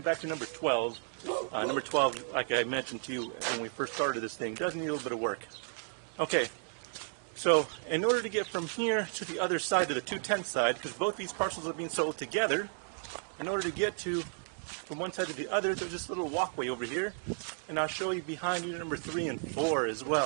to number 12. Number 12, like I mentioned to you when we first started this thing, does need a little bit of work. Okay. So in order to get from here to the other side, to the 210 side, because both these parcels are being sold together, in order to get from one side to the other, there's this little walkway over here, and I'll show you behind unit number 3 and 4 as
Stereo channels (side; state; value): left; silent; 56 dB below the other